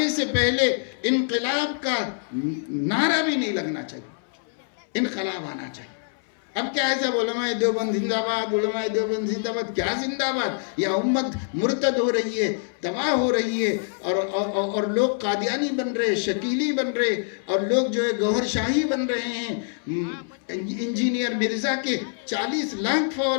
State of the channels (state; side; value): silent; right; 62 dB below the other